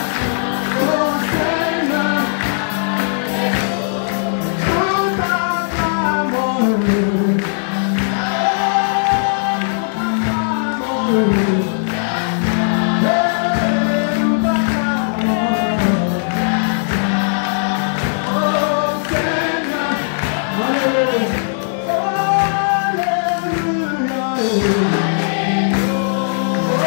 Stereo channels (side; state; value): right; silent; digital silence